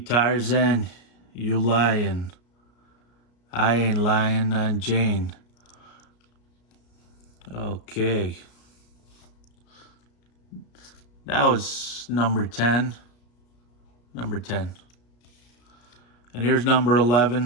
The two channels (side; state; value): right; late; 33 ms